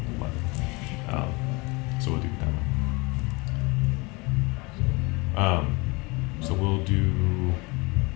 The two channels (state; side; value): quieter; right; 26.5 dB